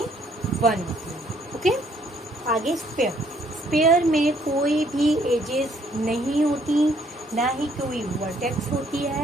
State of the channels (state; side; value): normal; both; correlation 0.65